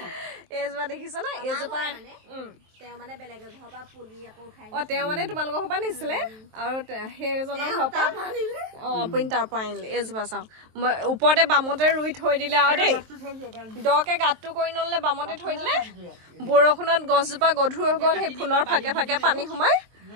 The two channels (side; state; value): left; late; 23 ms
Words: এইজোপা দেখিছ না এইজোপা তেওঁ মানে বেলেগ ঘৰৰ পৰা পুলি আকৌ খাই তেওঁ মানে তোমালোকৰ ঘৰৰ পৰা নিছিলে আৰু সেইজনৰ ঘৰৰ পৰা আপুনি তাৰ পৰা আনিলে এইজোপা চাওঁ ওপৰতে বামতে ৰুই থৈ দিলে আৰু দেই দকে গাঁতটো কৰি নললে বামতে থৈ দিলে বৰষুণত গছজোপা গধুৰ হৈ গ'ল সেই ফুলৰ ফাকে ফাকে পানী সোমাই